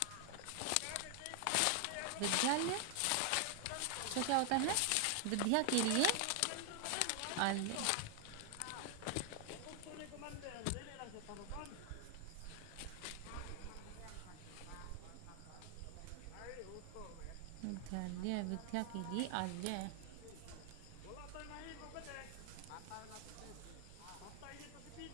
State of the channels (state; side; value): different; both; correlation 0.00